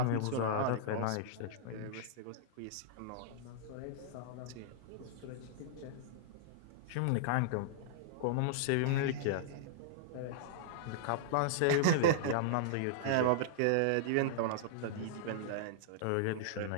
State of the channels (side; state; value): both; different; correlation -0.02